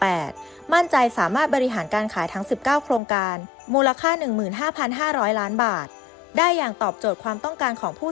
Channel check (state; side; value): drops out; right; at 3.0 s